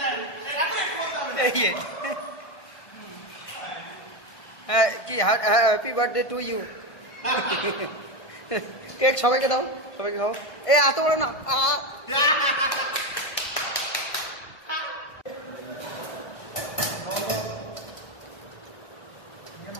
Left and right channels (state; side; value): late; right; 1.5 ms